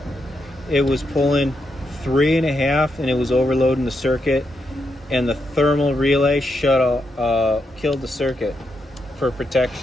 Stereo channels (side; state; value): both; normal; correlation 0.82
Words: it was pulling 3.5 and it was overloading the circuit, and the thermal relay killed the circuit for